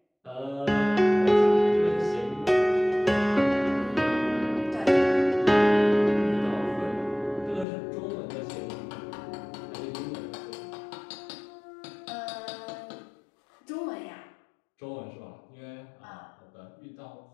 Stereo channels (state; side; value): drops out; right; at 7.7 s